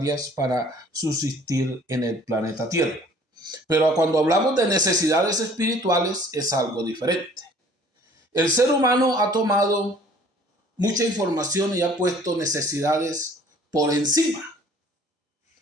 para subsistir en el planeta Tierra. Pero cuando hablamos de necesidades espirituales es algo diferente. El ser humano ha tomado mucha información y ha puesto necesidades por encima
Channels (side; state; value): both; normal; correlation 0.53